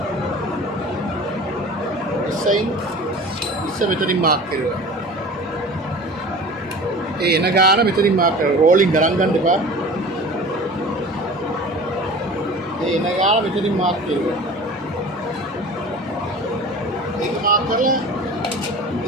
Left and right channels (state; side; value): normal; both; correlation 0.39